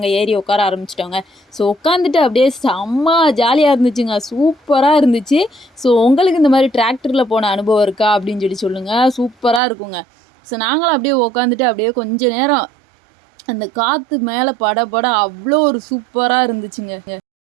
ஏறி உட்கார ஆரம்பிச்சிட்டோங்க. ஸோ உட்காந்துட்டு அப்படியே செம்ம ஜாலியாக இருந்துச்சுங்க, சூப்பராக இருந்துச்சு. ஸோ உங்களுக்கு இந்த மாதிரி டிராக்டரில் போன அனுபவம் இருக்கா அப்படின்னு சொல்லுங்கள். சூப்பராக இருக்குங்க. ஸோ நாங்களும் அப்படியே உட்காந்துட்டு அப்படியே கொஞ்சம் நேரம் அந்த காற்று மேலே பட அவ்வளோ ஒரு சூப்பராக இருந்துச்சுங்க.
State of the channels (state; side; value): drops out; left; at 9.6 s